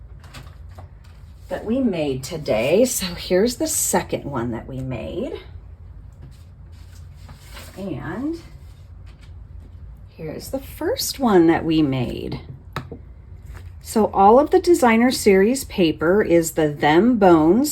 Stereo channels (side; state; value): both; identical; correlation 1.00